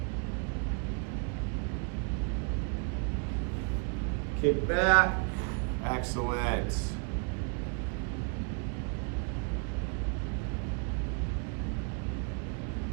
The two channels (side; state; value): left; quieter; 38.4 dB